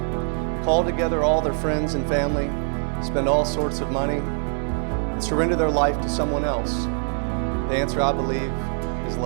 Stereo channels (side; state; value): left; silent; 58 dB below the other